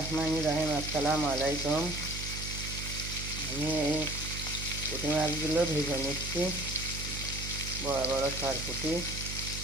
রহিম। আসসালামু আলাইকুম। আমি এই পুঁটি মাছগুলো ভেজে নিচ্ছি, বড় বড় সরপুঁটি।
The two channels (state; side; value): noise; right; hum, 6 dB below the sound